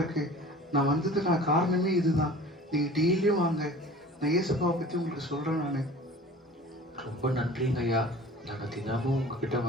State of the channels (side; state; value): both; normal; correlation 0.43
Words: நான் வந்ததுக்கான காரணமே இதுதான். நீங்க டெய்லியும் வாங்க, நான் இயேசுப்பாவை பத்தி உங்களுக்கு சொல்றேன். நானு ரொம்ப நன்றிங்க ஐயா. நாங்க தினமும் உங்ககிட்ட